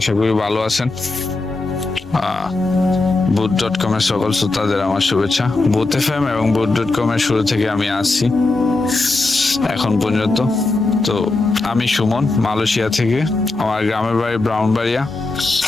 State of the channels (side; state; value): right; quieter; 3.3 dB